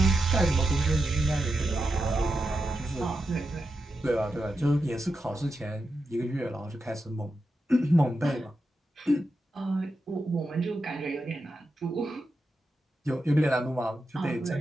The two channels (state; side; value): normal; both; correlation 0.89